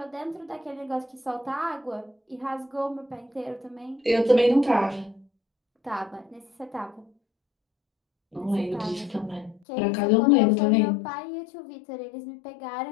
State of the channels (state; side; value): drops out; right; at 9.6 s